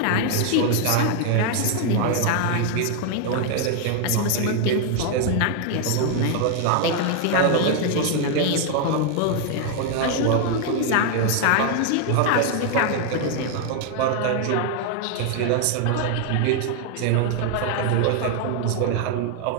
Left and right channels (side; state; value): both; different; correlation 0.00